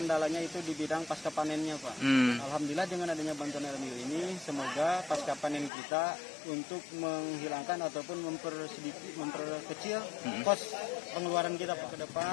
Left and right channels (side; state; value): right; drops out; at 5.7 s